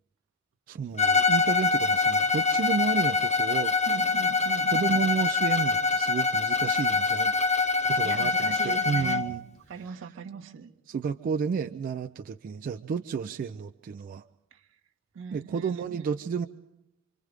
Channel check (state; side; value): normal; both; correlation 0.04